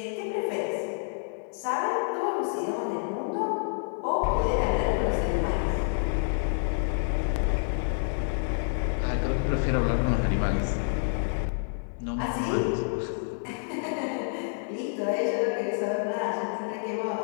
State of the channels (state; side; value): silent; right; digital silence